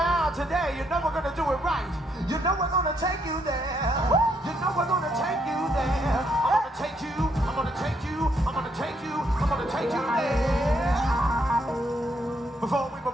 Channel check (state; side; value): normal; both; correlation 0.74